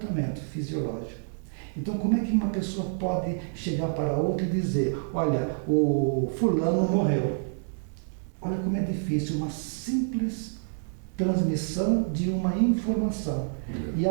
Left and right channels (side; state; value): left; silent; digital silence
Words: fisiológico. Então, como é que uma pessoa pode chegar para outra e dizer: olha, o fulano morreu? Olha como é difícil uma simples transmissão de uma informação e